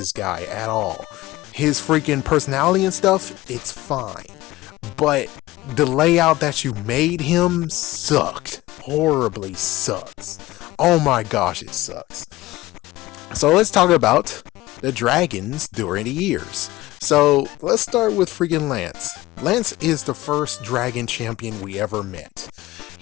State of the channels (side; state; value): right; quieter; 17.9 dB